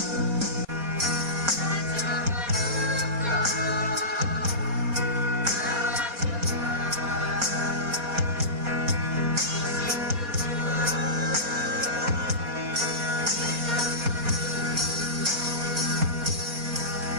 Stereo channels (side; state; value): left; late; 4.2 ms